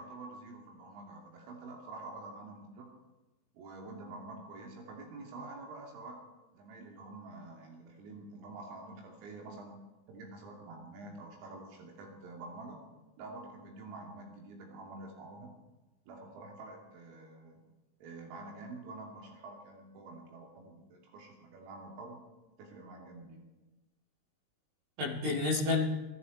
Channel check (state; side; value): late; left; 20 ms